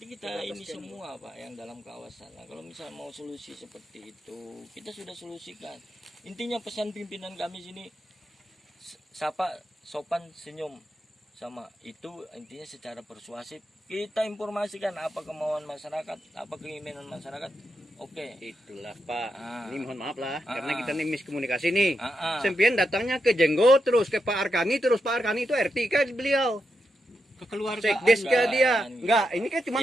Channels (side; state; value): both; normal; correlation 0.85